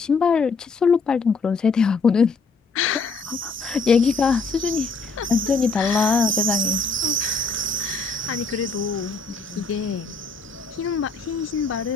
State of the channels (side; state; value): right; quieter; 4.1 dB